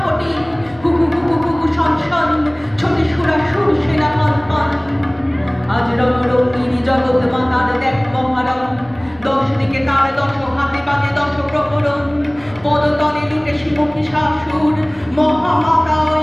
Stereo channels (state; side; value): noise; right; rumble, 25 dB below the sound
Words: কুকু কুকু কুকু শন শন ছোটে সুরাসুর সেনা হন হন আজ রঙিনী জগৎ মাতার দেখ মহারণ দশ দিকে তার দশ হাতে বাজে দশ প্রহরণ পদতলে লুটে শিমুখী শাসুর মহামাতা ওই